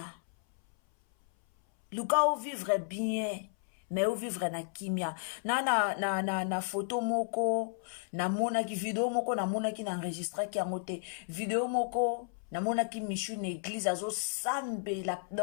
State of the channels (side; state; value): right; silent; 56 dB below the other